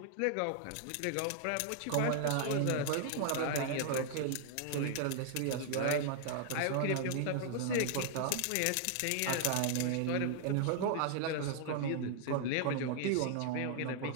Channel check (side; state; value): both; different; correlation 0.00